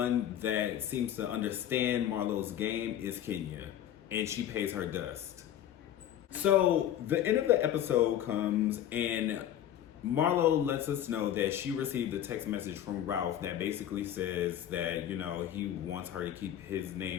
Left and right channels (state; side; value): quieter; right; 11.0 dB